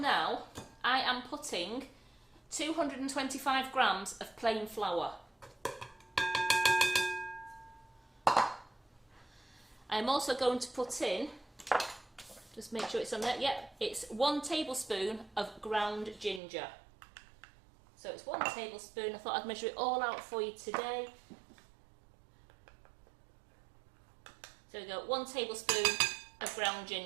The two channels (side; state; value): left; drops out; at 16.4 s